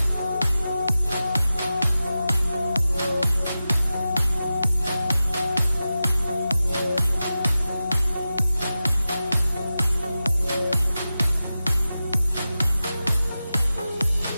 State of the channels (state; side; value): inverted; both; correlation -0.93